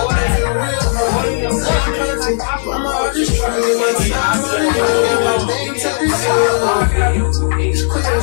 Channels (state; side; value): silent; right; digital silence